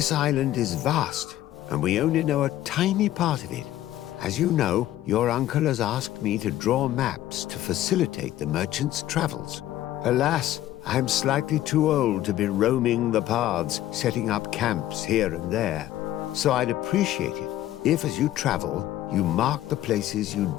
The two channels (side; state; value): right; quieter; 13.7 dB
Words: island is vast, and we only know a tiny part of it. As you know, your uncle has asked me to draw maps to facilitate the merchant's travels. Alas, I'm slightly too old to be roaming the paths, setting up camps here and there. So I'd appreciate it if, as you travel, you mark the places you